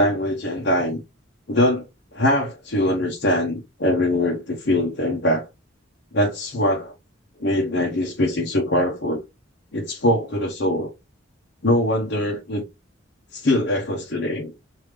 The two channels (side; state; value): both; normal; correlation 0.18